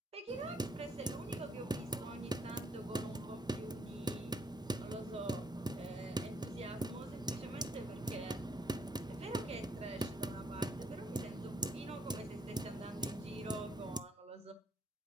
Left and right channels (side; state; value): both; normal; correlation 0.69